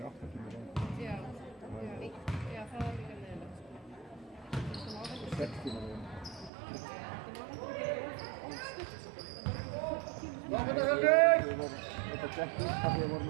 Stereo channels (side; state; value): left; drops out; at 6.5 s